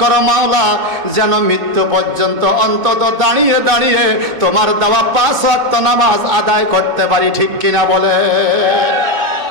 করো মাওলা, যেন মৃত্যু পর্যন্ত অন্তত দাঁড়িয়ে দাঁড়িয়ে তোমার দেওয়া 5 ওয়াক্ত নামাজ আদায় করতে পারি। ঠিক কিনা বলে?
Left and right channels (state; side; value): late; left; 2.4 ms